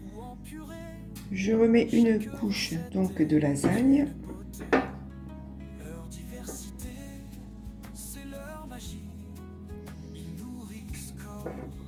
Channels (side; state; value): both; identical; correlation 1.00